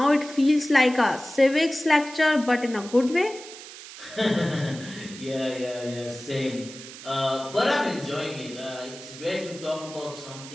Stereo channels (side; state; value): right; noise; hiss, 15 dB below the sound